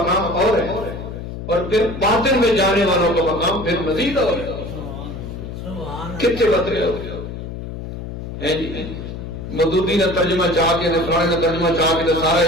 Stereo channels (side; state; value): left; noise; hum, 8 dB below the sound